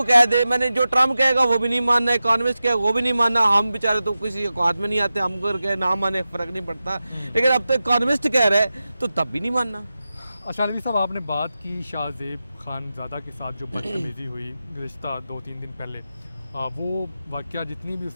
कह दे, मैंने जो ट्रम्प कहेगा वो भी नहीं मानना, इकॉनमिस्ट कहेगा वो भी नहीं मानना, हम बेचारे तो किसी औकात में नहीं आते, हम अगर कहे ना माने फ़र्क नहीं पड़ता, लेकिन अब तो इकॉनमिस्ट कह रहे हैं तो तब भी नहीं मानना। अच्छा अलवी साहब, आपने बात की शाहज़ेब खानज़ादा के साथ जो बदतमीज़ी हुई गुज़िश्ता 2-3 दिन पहले, वो वाक़या जितनी भी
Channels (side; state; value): both; inverted; correlation -0.93